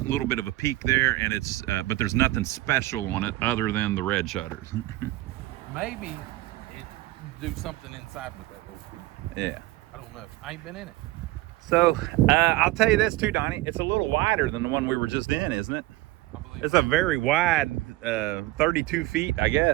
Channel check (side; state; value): left; quieter; 18.1 dB